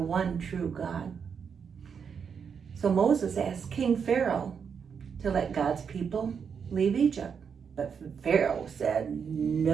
true God. So Moses asked King Pharaoh to let God's people leave Egypt. But Pharaoh said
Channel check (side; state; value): left; quieter; 6.7 dB